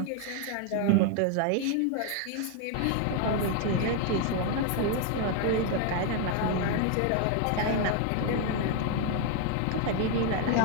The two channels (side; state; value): both; different; correlation 0.01